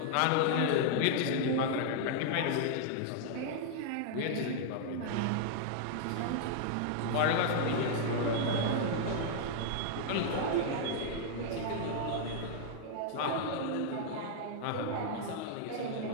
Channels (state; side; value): different; both; correlation -0.01